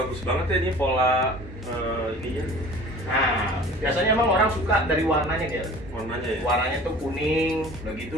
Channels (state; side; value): normal; both; correlation 0.44